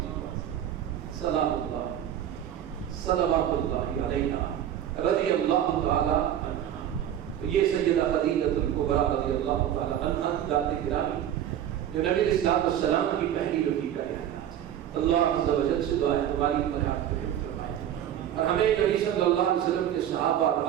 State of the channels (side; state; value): left; quieter; 10.7 dB